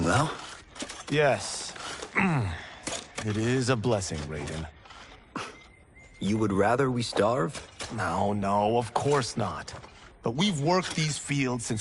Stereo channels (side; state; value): both; identical; correlation 1.00